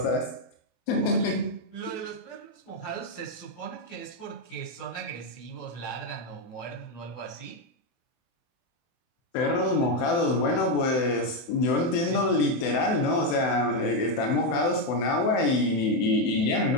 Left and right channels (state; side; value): late; right; 24 ms